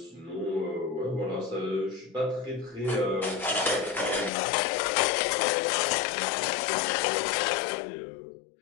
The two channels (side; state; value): right; drops out; at 4.3 s